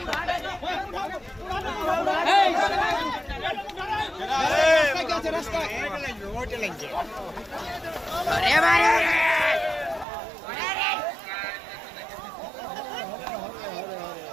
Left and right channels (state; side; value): drops out; left; at 10.1 s